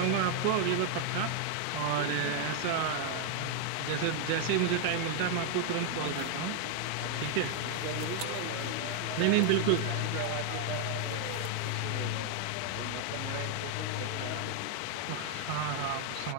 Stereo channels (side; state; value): both; different; correlation 0.00